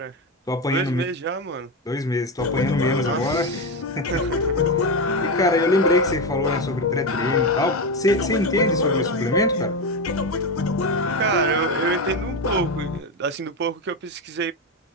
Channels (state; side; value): normal; both; correlation 0.14